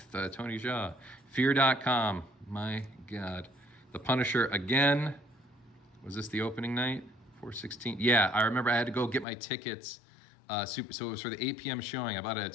Tony Jaa. Fear.com. My God. The Punisher again. Was this the opening night? 4/16. Yeah, I remember I had to go get my tickets. So it was for the 8 p.m. showing. I bought it at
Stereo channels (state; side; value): drops out; right; at 9.2 s